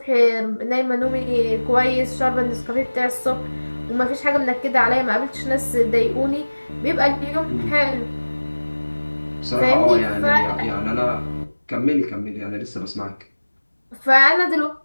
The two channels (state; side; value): inverted; both; correlation -1.00